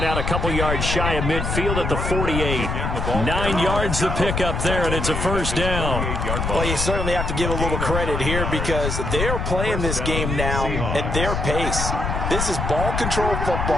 out a couple yards shy of midfield at the 48. 9 yards the pickup there, and it's a first down. Well, you certainly have to give a little credit here because they're playing this game now at their pace. This is ball control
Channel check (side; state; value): left; noise; rumble, 2 dB below the sound